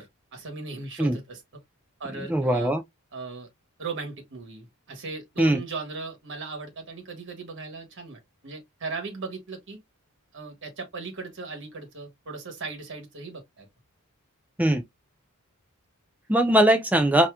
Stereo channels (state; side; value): normal; both; correlation 0.68